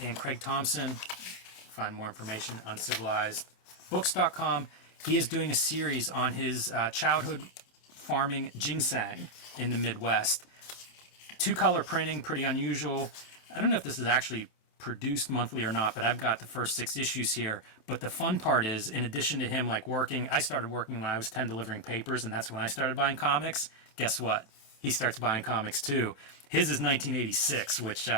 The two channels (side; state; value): right; late; 27 ms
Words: Craig Thompson, find more information at uncivilizedbooks.com. He is doing a series on his childhood farming ginseng in the Midwest. 2-color printing, pretty unusual. I don't know if this is actually produced monthly or not, but I've got the first 6 issues here. But the fun part is, in addition to him like working, I started working when I was 10 delivering papers, and that's when I started buying comics. Guess what? He starts buying comics too. His is 1986, which,